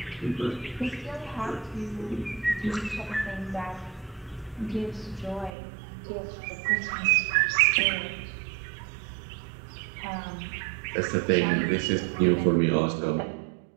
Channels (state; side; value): drops out; left; at 5.5 s